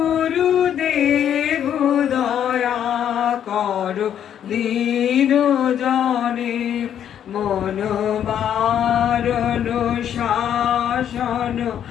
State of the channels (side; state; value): right; quieter; 9.6 dB